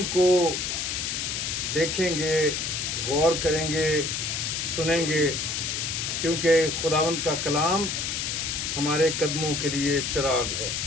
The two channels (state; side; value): noise; left; hiss, 2 dB below the sound